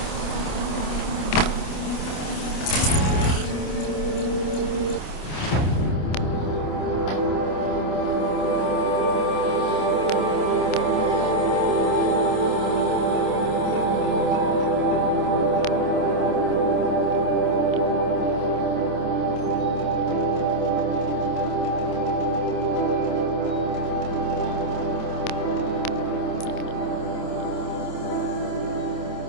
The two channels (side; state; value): right; late; 27 ms